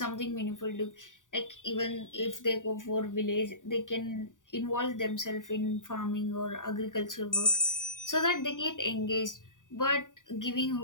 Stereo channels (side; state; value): right; late; 0.88 ms